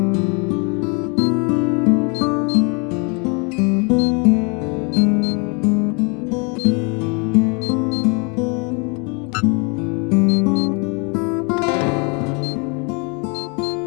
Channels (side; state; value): right; quieter; 33.8 dB